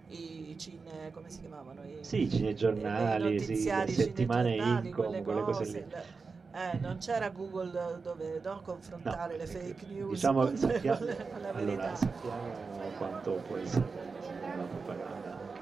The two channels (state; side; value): quieter; left; 4.6 dB